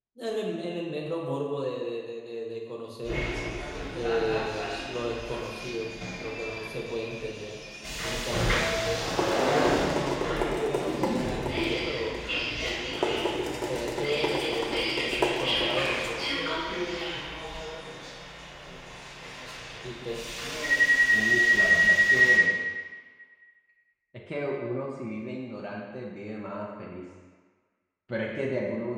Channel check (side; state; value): both; identical; correlation 1.00